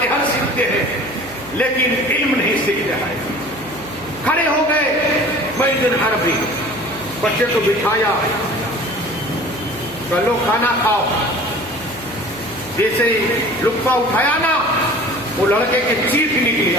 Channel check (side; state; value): right; noise; hum, 21 dB below the sound